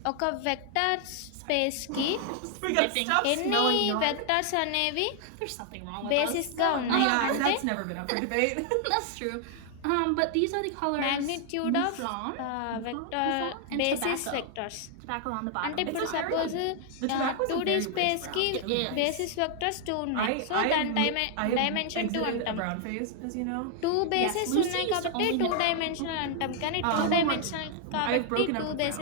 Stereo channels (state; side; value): different; both; correlation 0.00